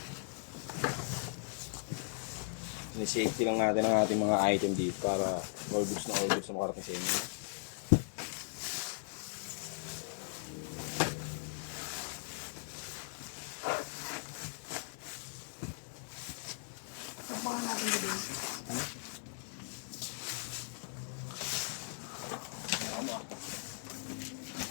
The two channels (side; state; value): right; silent; 52 dB below the other